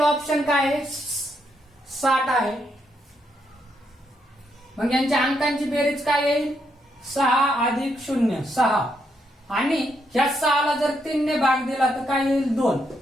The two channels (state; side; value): normal; both; correlation 0.78